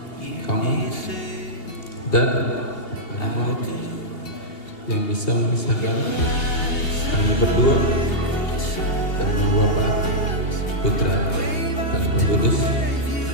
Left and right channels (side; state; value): right; late; 2.8 ms